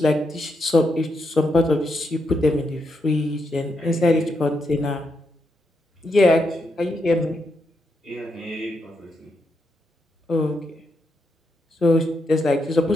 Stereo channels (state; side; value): normal; both; correlation 0.81